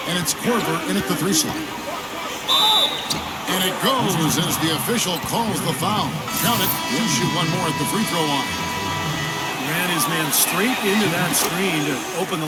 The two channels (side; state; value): both; identical; correlation 1.00